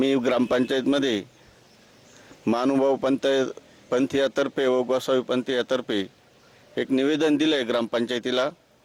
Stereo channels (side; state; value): both; identical; correlation 1.00